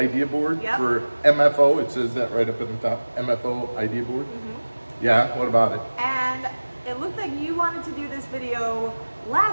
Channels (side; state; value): both; inverted; correlation -1.00